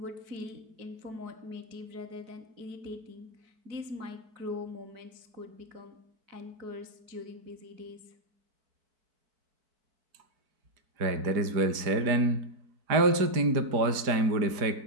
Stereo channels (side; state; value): left; late; 4.9 ms